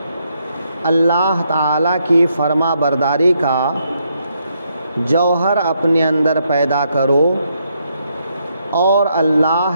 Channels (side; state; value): both; inverted; correlation -0.76